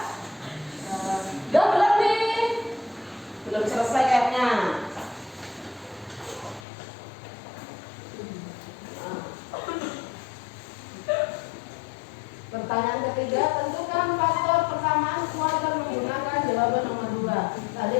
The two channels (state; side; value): drops out; right; at 6.7 s